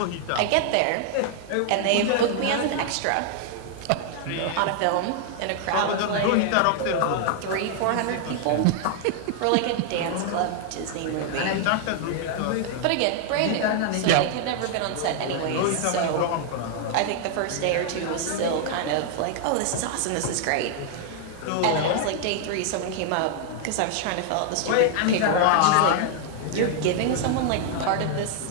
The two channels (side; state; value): both; different; correlation 0.00